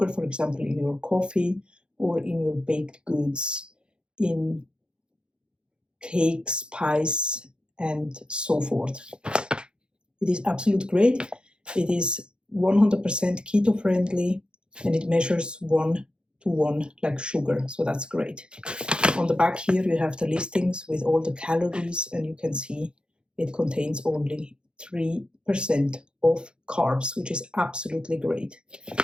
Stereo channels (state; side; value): late; left; 0.052 ms